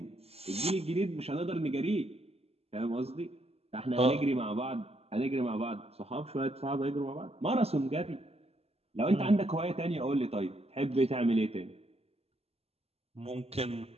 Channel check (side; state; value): left; late; 0.29 ms